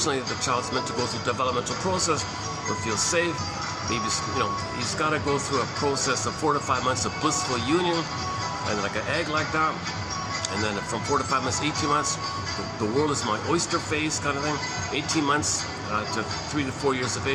the child's meant to go through a developmental process where it feels safe. Maybe, he's got to go through a process of 4 to 5 months of blissful union, and like an egg like that. And then from 4 to 5 months, 18 months, the world is my oyster phase kind of thing. 18 months to 3 to 4 years of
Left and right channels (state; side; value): identical; both; correlation 1.00